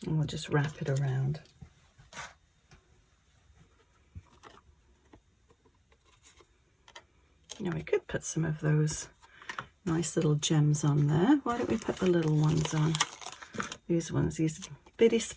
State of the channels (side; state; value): both; identical; correlation 1.00